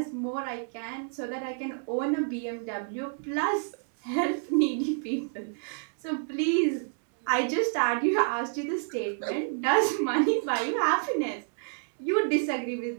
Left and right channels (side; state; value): left; silent; digital silence